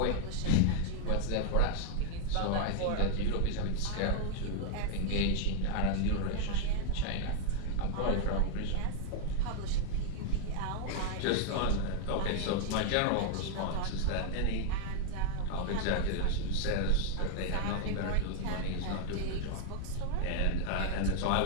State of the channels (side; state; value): both; different; correlation 0.00